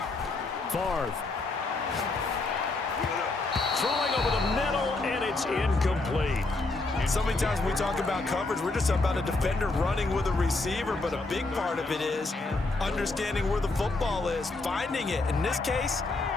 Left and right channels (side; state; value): right; quieter; 3.3 dB